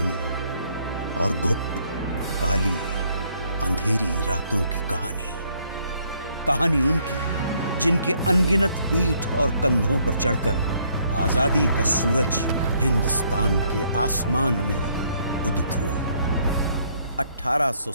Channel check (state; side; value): inverted; both; correlation -0.68